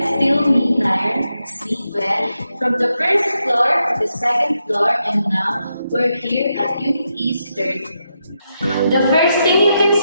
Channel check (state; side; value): inverted; both; correlation -0.84